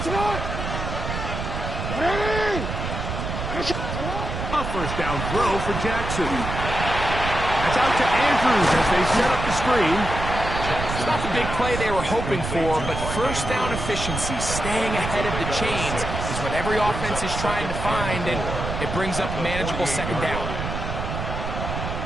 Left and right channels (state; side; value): noise; right; rumble, 5 dB below the sound